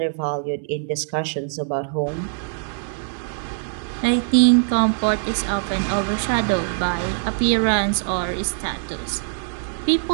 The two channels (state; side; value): silent; left; digital silence